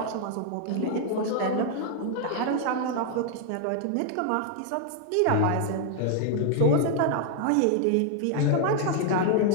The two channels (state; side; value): different; both; correlation 0.00